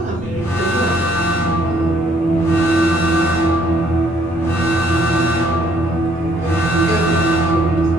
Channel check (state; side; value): normal; both; correlation 0.66